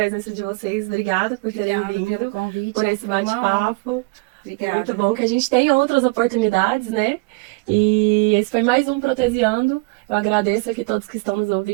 de vocês, obrigada por terem Obrigada vindo, pelo convite, por esse foi uma honra. bate-papo. Obrigada. Muito bom que a gente tem outras oportunidades, né? E esse foi mais um Protesiando. Eu agradeço aqui todos que estão nos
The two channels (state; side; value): quieter; left; 27.0 dB